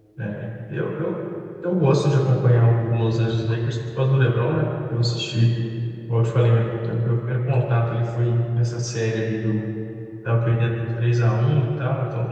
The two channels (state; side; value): identical; both; correlation 1.00